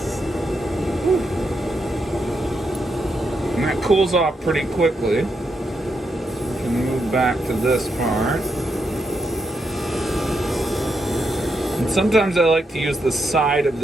And that cools off pretty quickly. We can move back to this part. And sometimes I like to use the side of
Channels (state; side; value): normal; both; correlation 0.82